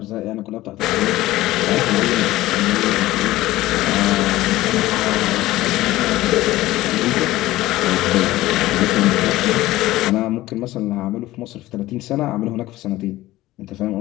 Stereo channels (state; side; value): quieter; right; 16.8 dB